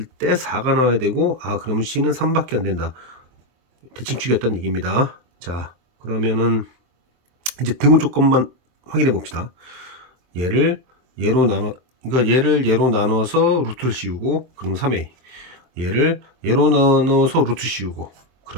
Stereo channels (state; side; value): late; left; 23 ms